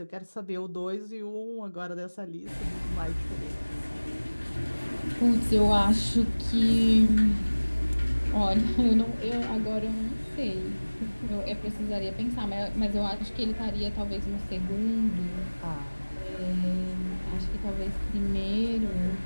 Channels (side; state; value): both; inverted; correlation -1.00